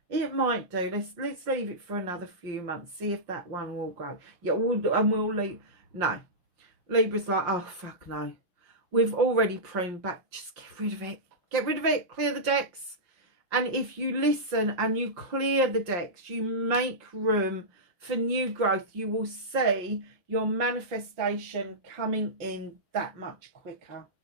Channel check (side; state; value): left; late; 5.7 ms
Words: It might do. Let's leave it for another few months. See if that one will grow. Yeah, we'll leave. No. Libra's like, oh, fuck no. We've already pruned back. Just get rid of it. Get rid of it. Clear the decks. And if you listen and you clear the decks, you make room for new growth, you will see your manifestation coming in that much quicker.